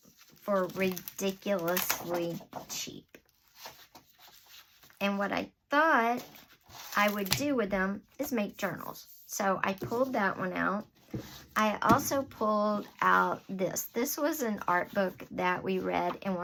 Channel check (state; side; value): identical; both; correlation 1.00